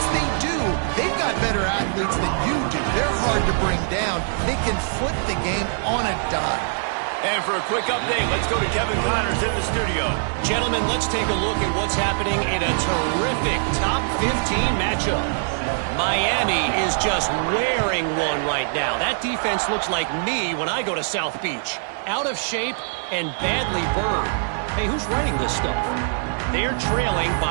they do, they've got better athletes than you do. They're hard to bring down. They can flip the game on a dime. And for a quick update, let's go to Kevin Connors in the studio. Gentlemen, let's take a look at what's happening in a terrific top 15 matchup. Miami is just wearing one right now. That defense looks like me when I go to South Beach. Out of shape and badly burned. Hey, who's writing this stuff? They're trailing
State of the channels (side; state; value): left; silent; digital silence